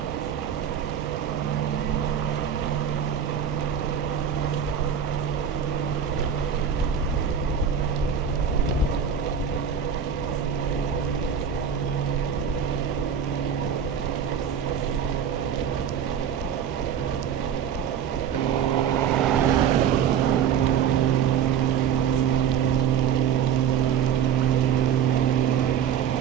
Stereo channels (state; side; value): quieter; left; 8.1 dB